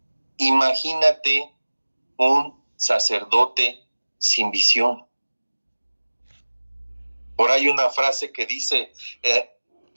Imagínate un sacerdote sin visión. Por ahí una frase que dice,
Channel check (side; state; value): both; inverted; correlation -1.00